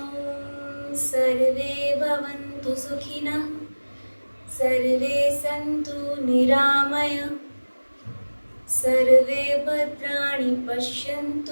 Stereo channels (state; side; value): inverted; both; correlation -1.00